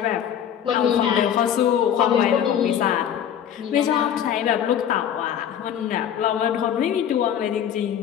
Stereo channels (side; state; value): right; quieter; 9.3 dB